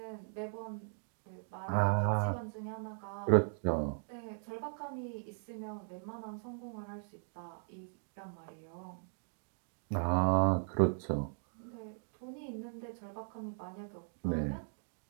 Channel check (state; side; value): silent; left; digital silence